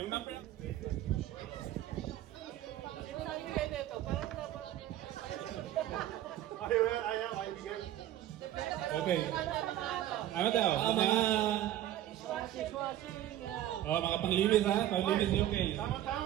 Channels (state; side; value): quieter; left; 12.9 dB